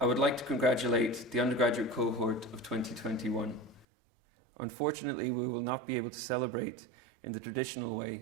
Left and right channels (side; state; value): left; drops out; at 3.9 s